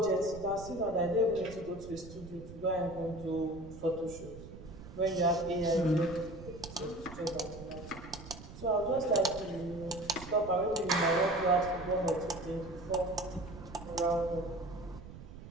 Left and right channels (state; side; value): noise; right; rumble, 14 dB below the sound